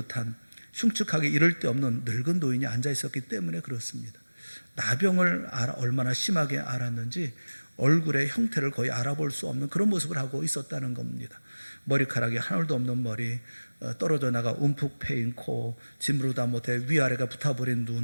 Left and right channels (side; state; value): both; inverted; correlation -1.00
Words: 흉측하게 이를 데 없는 늙은 노인이 앉아 있었기 때문에 그렇습니다. 나병을 얼마나 심하게 앓았는지 얼굴의 형태를 거의 알아볼 수 없는 그런 모습을 하고 있었다는 겁니다. 머리카락이 하늘도 없는 머리, 떨어져 나가 움푹 패인 코, 짐으로다 못해 위아래가 붙어버린